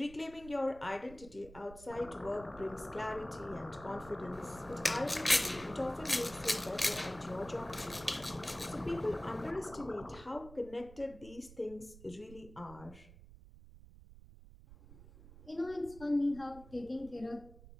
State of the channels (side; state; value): right; noise; rumble, 18 dB below the sound